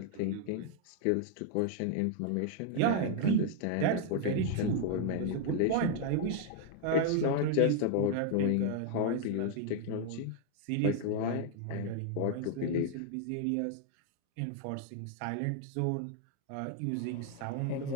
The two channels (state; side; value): different; both; correlation 0.00